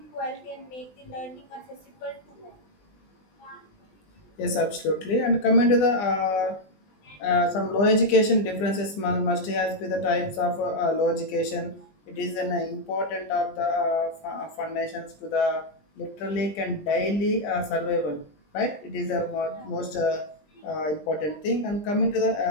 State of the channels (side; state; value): right; late; 20 ms